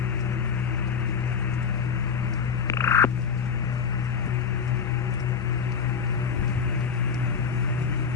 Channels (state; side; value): quieter; right; 6.4 dB